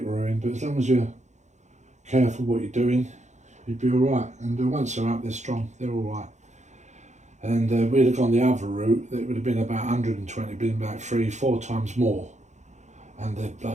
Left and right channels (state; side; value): late; left; 0.34 ms